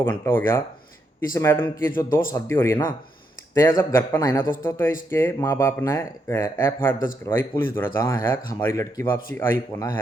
घंटा हो गया। इस मैडम की जो 2 शादी हो रही है ना, तो यह जब घर पर आई ना दोस्तों, तो इसके माँ बाप ने FIR दर्ज करवाई पुलिस द्वारा, जहाँ है कि हमारी लड़की वापसी आई को ना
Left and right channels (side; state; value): both; normal; correlation 0.79